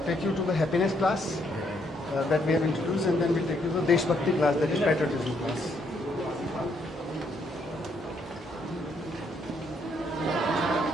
take you to the happiness class that we have introduced, and then we'll take you to the Deshbhakti class, that is patriotism class.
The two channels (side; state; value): both; normal; correlation 0.72